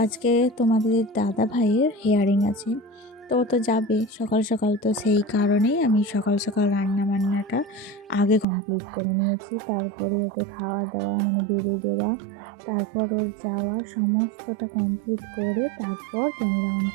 আজকে তোমাদের দাদা ভাইয়ের হেয়ারিং আছে। তো ও তো যাবে সকাল সকাল, তো সেই কারণেই আমি সকাল সকাল রান্না বান্নাটা আগে কমপ্লিট করে নিয়েছি। তারপরে ওকে খাওয়া দাওয়া মানে বেড়ে দেওয়া, তারপর ওর যাওয়া সমস্তটা কমপ্লিট করে তারপর ক্যামেরা অন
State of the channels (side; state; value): left; drops out; at 8.5 s